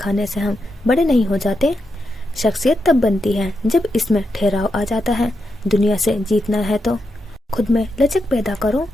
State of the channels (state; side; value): normal; both; correlation 0.85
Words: से हम बड़े नहीं हो जाते। शख्सियत तब बनती है जब इसमें ठहराव आ जाता है। दुनिया से जीतना है तो खुद में लचक पैदा करो।